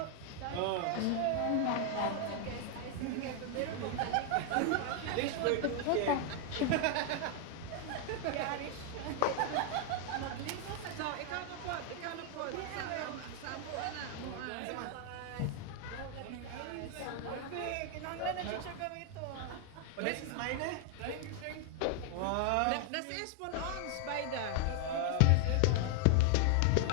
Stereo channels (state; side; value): different; both; correlation 0.00